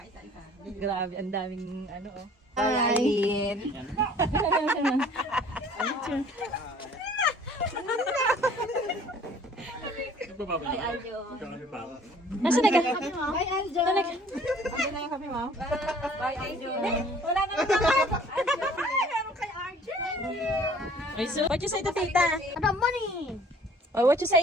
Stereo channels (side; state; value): both; normal; correlation 0.53